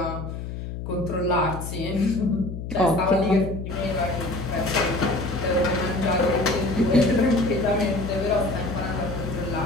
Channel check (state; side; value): noise; left; hum, 7 dB below the sound